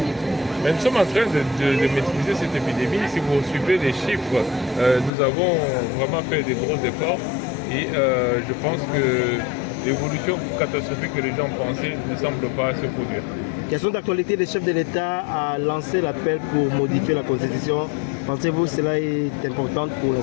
Mais nous sommes en train de maîtriser cette épidémie. Si vous suivez les chiffres, nous avons vraiment fait des gros efforts et je pense que l'évolution catastrophique que les gens pensaient ne semble pas se produire. Question d'actualité, le chef de l'État a lancé l'appel pour modifier la Constitution. Pensez-vous que cela est important pour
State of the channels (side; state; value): right; drops out; at 5.1 s